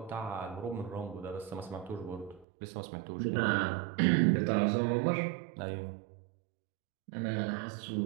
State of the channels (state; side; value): drops out; left; at 2.5 s